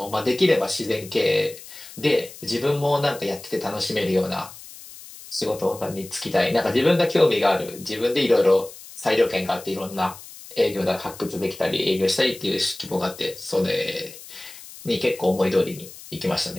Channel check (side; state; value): left; noise; hiss, 17 dB below the sound